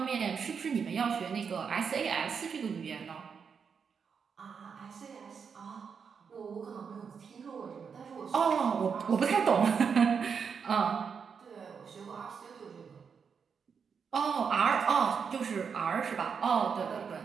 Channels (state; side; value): quieter; left; 6.3 dB